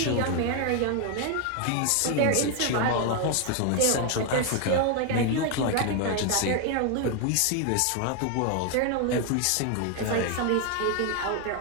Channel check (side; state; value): both; different; correlation 0.01